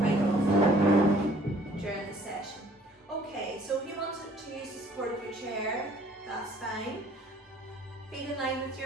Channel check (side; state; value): both; normal; correlation 0.57